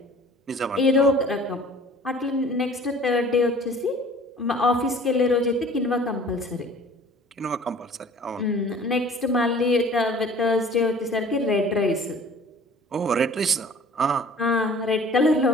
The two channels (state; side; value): normal; both; correlation 0.49